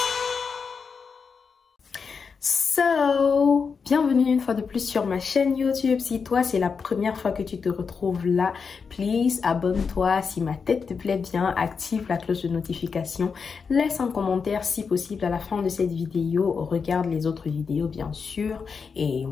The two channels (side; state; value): right; quieter; 5.6 dB